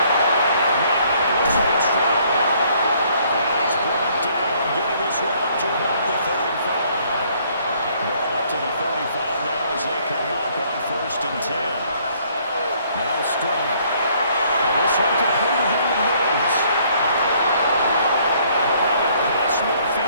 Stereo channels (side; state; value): both; inverted; correlation -0.64